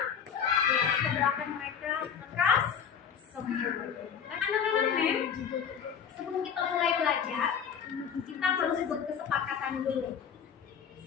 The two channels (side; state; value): right; quieter; 7.6 dB